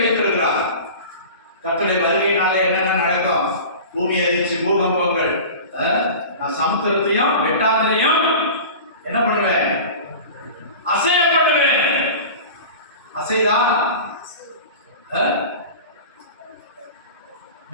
வைத்திருக்கிறார். கர்த்தருடைய வருகையினாலே என்னென்ன நடக்கும்? பூமி அதிர்ச்சி, பூகம்பங்கள். நான் சமுத்திரத்தையும் வெட்டாந்தரையும் என்ன பண்ணுவேன்? அசைய பண்ணுவேன். அசைதா?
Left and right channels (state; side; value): inverted; both; correlation -0.35